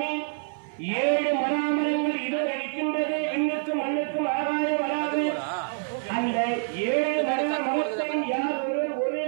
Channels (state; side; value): silent; left; 57 dB below the other